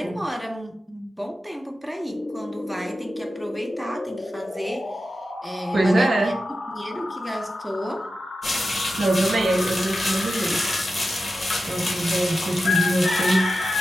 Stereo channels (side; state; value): both; normal; correlation 0.91